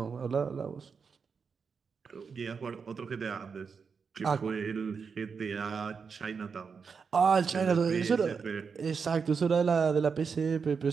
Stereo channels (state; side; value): quieter; left; 5.7 dB